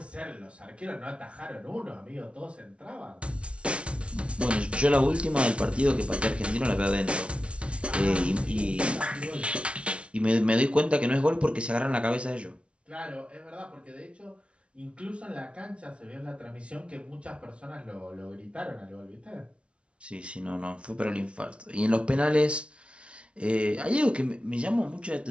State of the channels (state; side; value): late; left; 0.060 ms